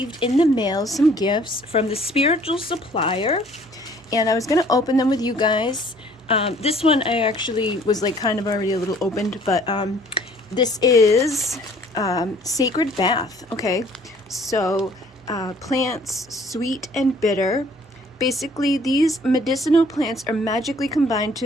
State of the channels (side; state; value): both; normal; correlation 0.56